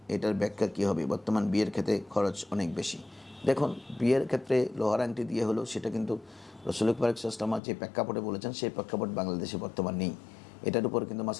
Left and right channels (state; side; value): drops out; right; at 7.6 s